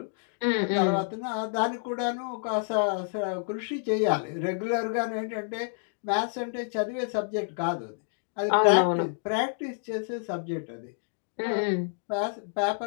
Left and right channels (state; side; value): silent; right; digital silence